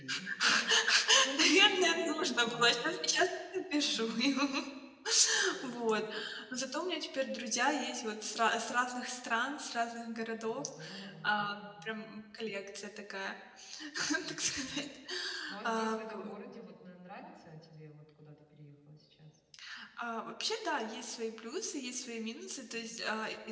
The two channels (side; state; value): both; identical; correlation 1.00